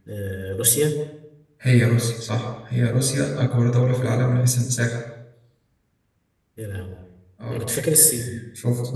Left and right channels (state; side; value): identical; both; correlation 1.00